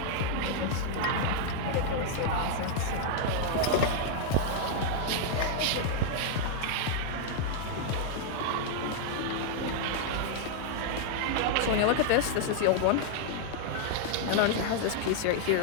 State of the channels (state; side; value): different; both; correlation 0.00